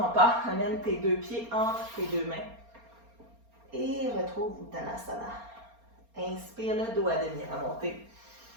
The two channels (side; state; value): left; late; 4.3 ms